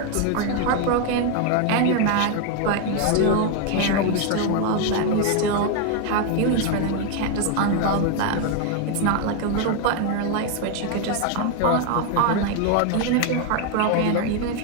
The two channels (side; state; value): both; different; correlation 0.01